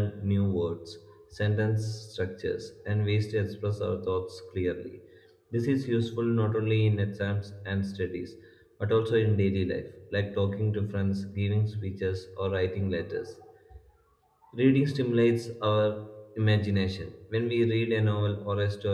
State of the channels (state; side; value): identical; both; correlation 1.00